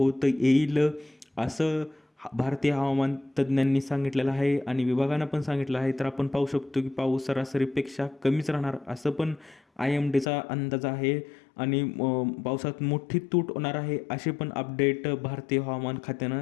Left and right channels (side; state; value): right; drops out; at 10.2 s